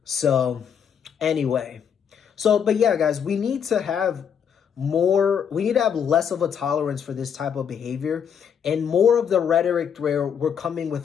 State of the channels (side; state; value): right; quieter; 7.7 dB